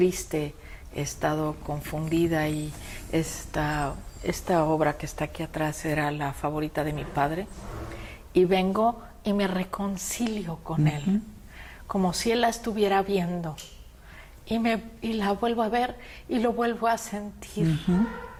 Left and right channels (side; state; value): both; identical; correlation 1.00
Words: he estado confundida y esta obra que está aquí atrás era la favorita de mi padre. Y vengo y me reconcilio con él, como si él la estuviera viendo. Y la vuelvo a ver y lo vuelvo a sentir,